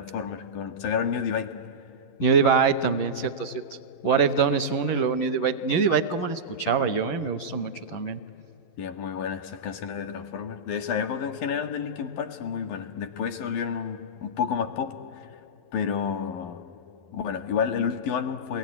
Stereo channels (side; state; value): right; late; 10 ms